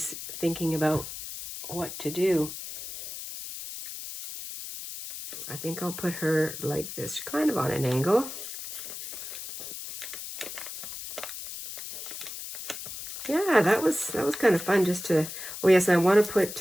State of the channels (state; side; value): noise; left; hiss, 9 dB below the sound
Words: thinking about what to do. I think I'll put her like this, kind of on an angle. Yeah, that was kind of fun just to, oh yes, I want to put,